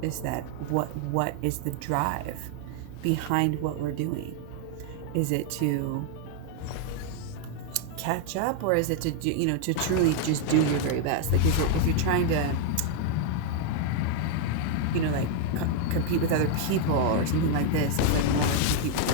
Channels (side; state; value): both; different; correlation 0.00